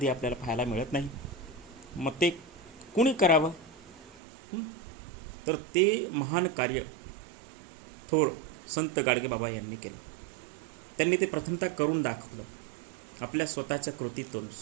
आपल्याला पाहायला मिळत नाही. मग ते कुणी करावं? तर ते महान कार्य थोर संत गाडगेबाबा यांनी केलं. त्यांनी ते प्रथमतः करून दाखवलं आपल्या स्वतःच्या कृतीतून.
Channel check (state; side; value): drops out; left; at 4.2 s